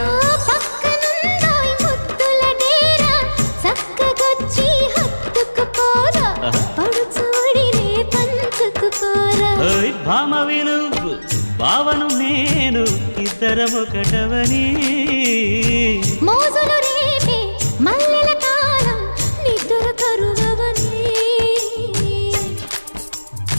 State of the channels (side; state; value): both; inverted; correlation -1.00